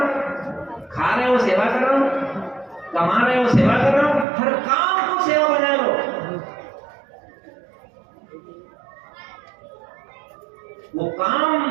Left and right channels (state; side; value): drops out; left; at 4.2 s